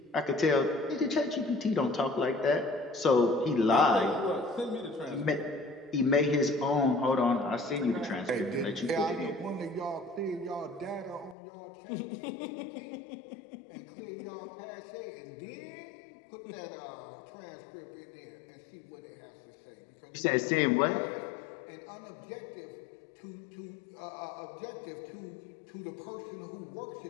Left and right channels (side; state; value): right; drops out; at 11.4 s